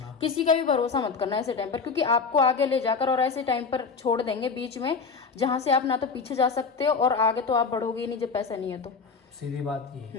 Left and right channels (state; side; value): quieter; right; 5.0 dB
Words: किसी का भी भरोसा मत करना ऐसे टाइम पर, क्योंकि आपको आगे ले जाकर और ऐसे टाइम पर छोड़ देंगे बीच में, जहां से आप ना तो पीछे जा सकते हो और आगे तो आप बढ़ोगे ही नहीं जब पैसा नहीं है तो। सीधी बात ये